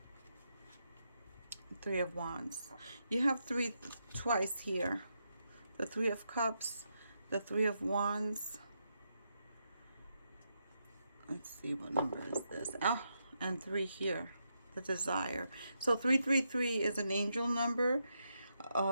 Three of Wands. You have three twice here. The Three of Cups, the Three of Wands. Let's see, what number is this? Oh, and 3 here, the Desire. So 333 is an angel number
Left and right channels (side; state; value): both; inverted; correlation -0.83